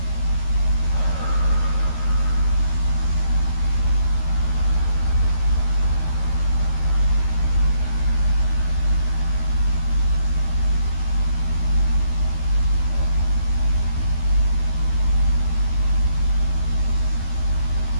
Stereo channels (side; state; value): right; late; 13 ms